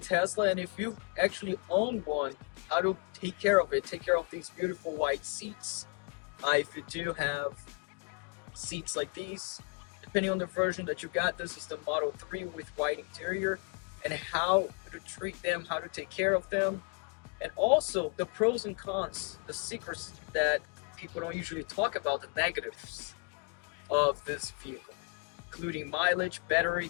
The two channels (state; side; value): quieter; right; 35.3 dB